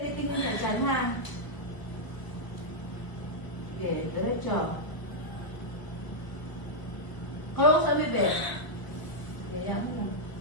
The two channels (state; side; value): late; right; 1.0 ms